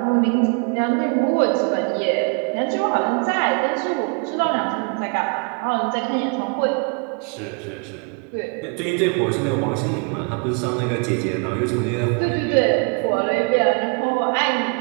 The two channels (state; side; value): quieter; left; 38.5 dB